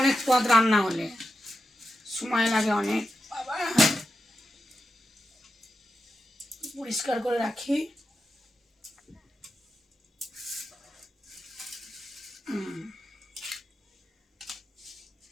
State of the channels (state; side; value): normal; both; correlation 0.89